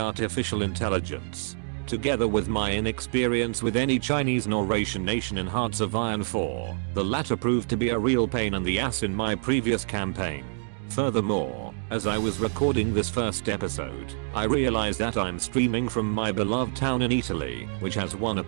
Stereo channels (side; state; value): left; silent; digital silence